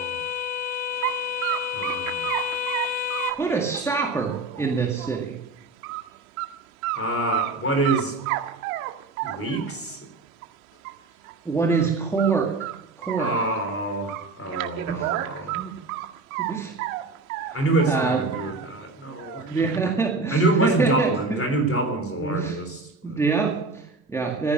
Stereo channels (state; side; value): quieter; left; 3.4 dB